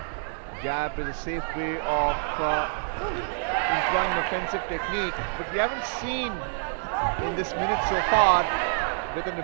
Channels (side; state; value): left; silent; 60 dB below the other